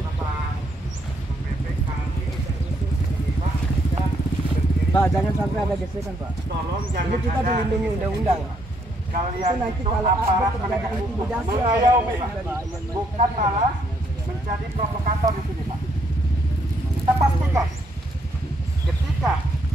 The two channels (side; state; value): both; normal; correlation 0.72